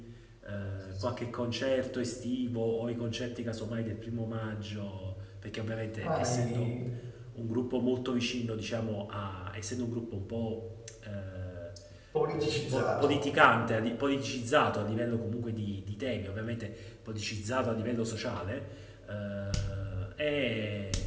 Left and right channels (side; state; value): both; identical; correlation 1.00